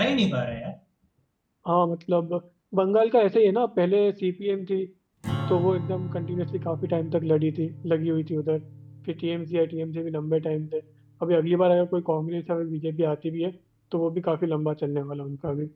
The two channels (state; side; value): identical; both; correlation 1.00